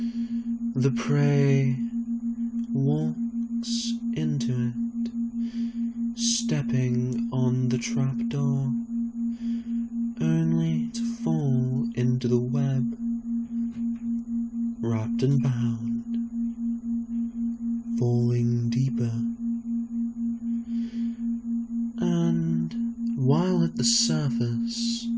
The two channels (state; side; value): identical; both; correlation 1.00